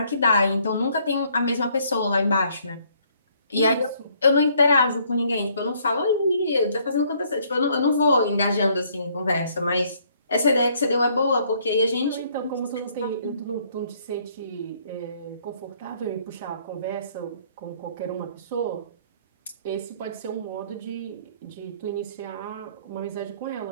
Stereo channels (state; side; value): inverted; both; correlation -0.65